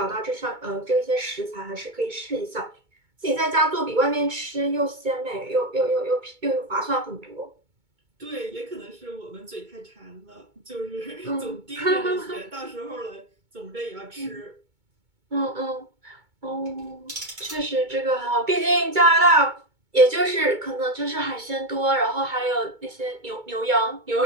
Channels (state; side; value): late; left; 2.2 ms